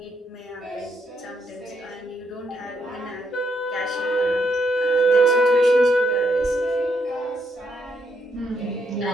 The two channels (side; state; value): both; normal; correlation 0.76